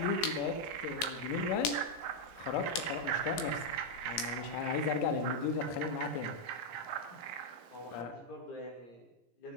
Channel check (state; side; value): late; right; 17 ms